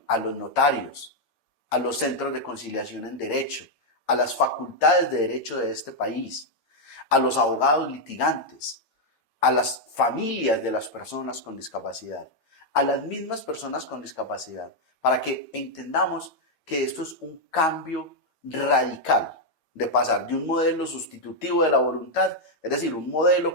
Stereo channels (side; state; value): right; late; 8.8 ms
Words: a los notarios, a los centros de conciliación en derecho, a las facultades de derecho de este país, a los abogados litigantes, a las familias de las personas con discapacidad, a las mismas personas con discapacidad, para que entendamos que esto es un cambio radical de pasar de un modelo sustitutivo de la voluntad, es decir, un modelo